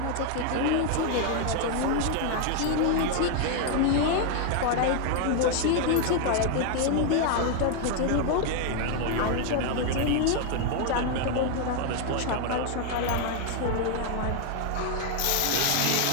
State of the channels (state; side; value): different; both; correlation 0.00